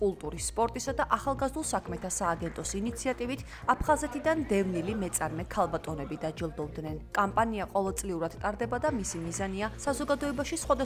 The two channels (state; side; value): identical; both; correlation 1.00